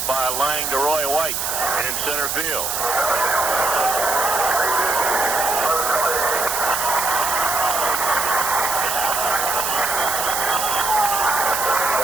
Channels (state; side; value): noise; right; hiss, 1 dB below the sound